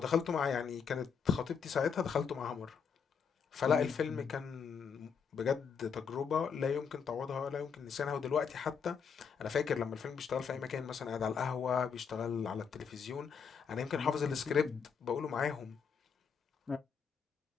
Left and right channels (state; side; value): quieter; right; 6.4 dB